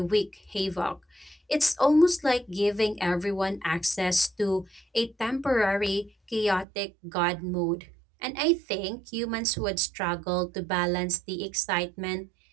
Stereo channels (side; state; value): left; drops out; at 6.7 s